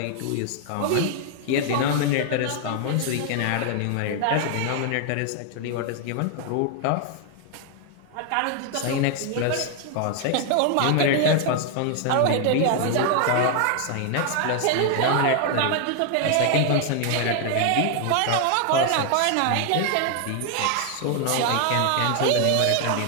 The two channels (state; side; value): different; both; correlation 0.00